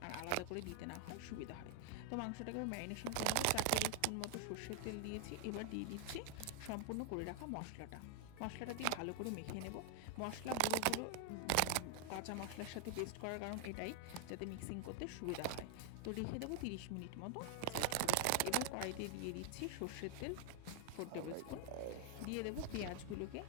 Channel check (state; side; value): different; both; correlation 0.00